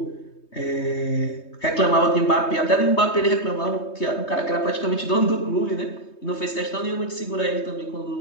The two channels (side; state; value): right; late; 3.2 ms